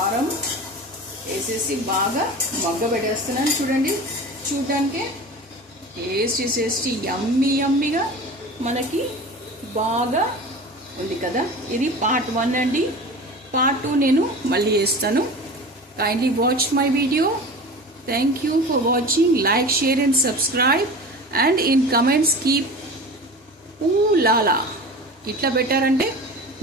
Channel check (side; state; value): both; normal; correlation 0.34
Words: వేసేసి బాగా మగ్గబెట్టేస్తున్నాను. చూడండి, చూడటానికి టేస్టీ యమ్మీగా మనకి బాగా ఉంది కదా. ఇది పార్ట్ 1 అండి. పార్ట్ 2 నేను మళ్ళీ వేస్తాను. Kindly watch my video. Thank you for watching. Like, share and subscribe and in comments keep లాలా ఇట్లా పెట్టారంటే